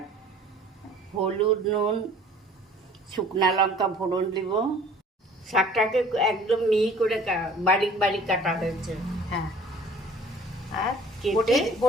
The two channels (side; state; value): both; normal; correlation 0.51